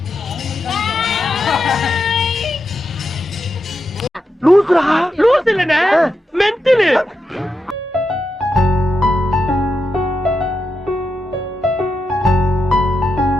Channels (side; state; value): both; normal; correlation 0.86